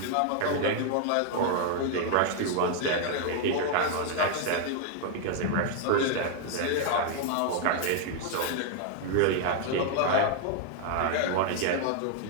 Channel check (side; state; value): both; different; correlation 0.00